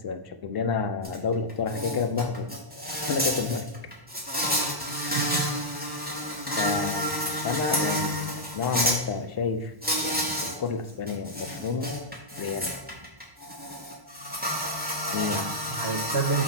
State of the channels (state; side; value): late; left; 1.1 ms